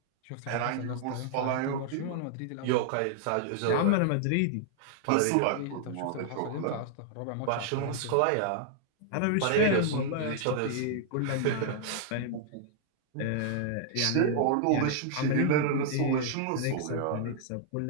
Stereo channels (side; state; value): both; different; correlation 0.00